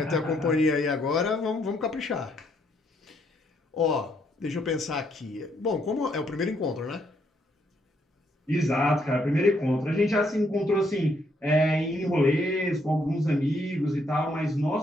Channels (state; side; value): normal; both; correlation 0.73